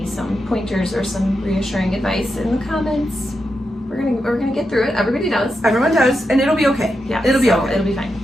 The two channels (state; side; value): normal; both; correlation 0.87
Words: some pointers or some reassuring advice in the comments. We're gonna get through it. Everybody does. Everyone does, and it'll be okay. Yeah, it'll be okay. It'll be fine.